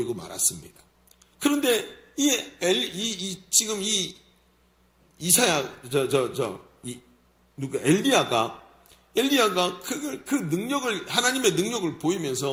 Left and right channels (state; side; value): identical; both; correlation 1.00